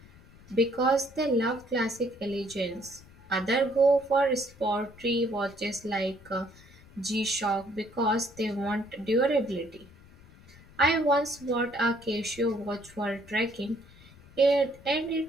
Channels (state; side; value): noise; left; rumble, 23 dB below the sound